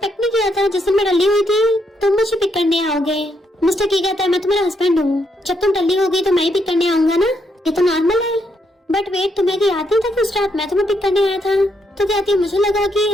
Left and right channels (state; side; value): normal; both; correlation 0.77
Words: नहीं किया था जिस दिन मैं टल्ली हुई थी तुम मुझे पिक करने आओगे। मिस्टर की कहता है मैं तुम्हारा हस्बैंड हूँ, जब तुम टल्ली हो गई तो मैं ही पिक करने आऊंगा ना, ये तो नॉर्मल है। बट वेट तुम्हें याद नहीं था कि उस रात मैं तुम्हें पिक करने आया था? तो कहती मुझे लगा कि